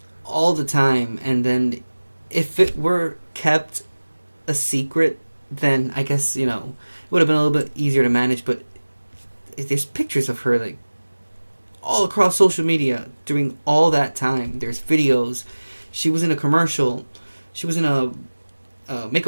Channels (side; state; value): both; inverted; correlation -1.00